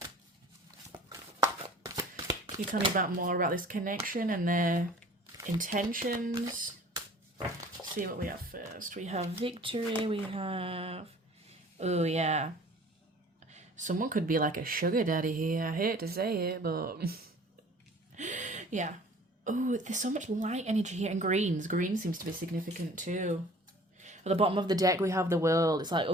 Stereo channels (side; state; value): both; normal; correlation 0.48